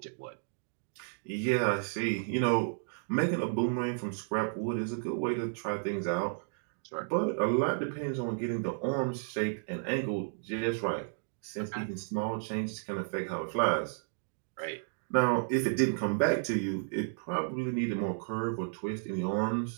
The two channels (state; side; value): silent; left; digital silence